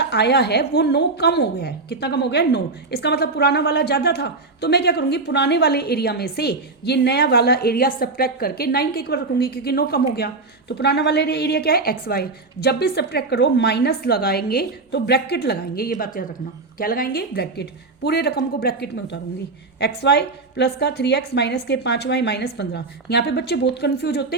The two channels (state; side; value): quieter; left; 3.7 dB